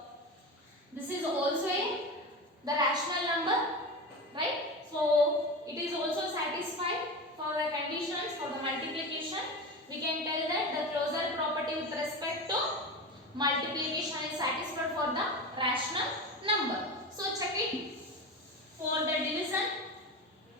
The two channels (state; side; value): normal; both; correlation 0.25